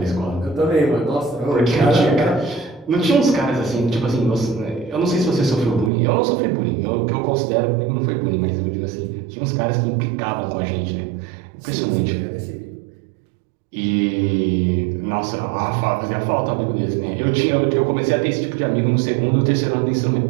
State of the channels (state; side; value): drops out; left; at 5.9 s